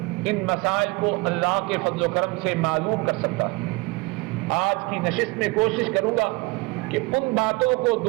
ان مسائل کو اللہ کے فضل و کرم سے معلوم کر سکتا ہے۔ آج کی نشست میں کوشش کروں گا کہ ان باتوں کو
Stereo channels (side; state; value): left; quieter; 25.2 dB